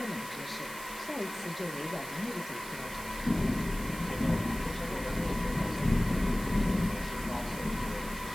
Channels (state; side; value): noise; right; hiss, 12 dB below the sound